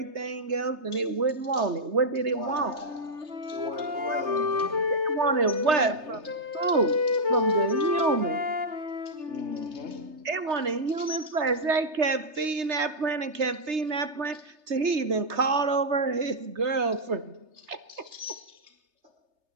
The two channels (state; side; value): late; left; 3.3 ms